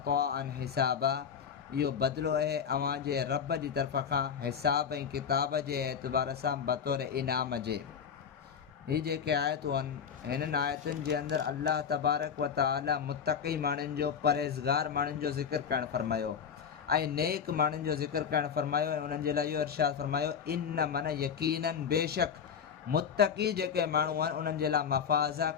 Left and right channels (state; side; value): quieter; right; 7.2 dB